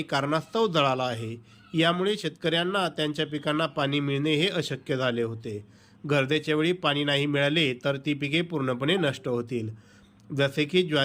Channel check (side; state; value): both; identical; correlation 1.00